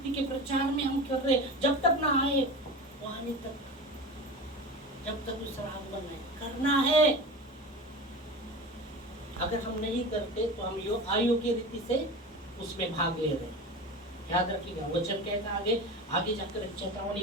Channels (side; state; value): both; normal; correlation 0.30